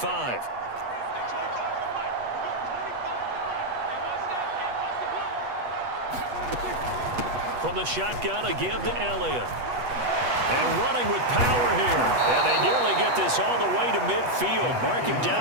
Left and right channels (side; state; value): left; late; 8.2 ms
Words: From the shotgun, a give to Elliott. And running with power here. And they nearly get this all the way to midfield. Mark him